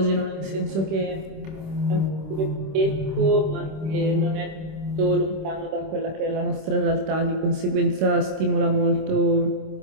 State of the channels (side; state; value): left; late; 26 ms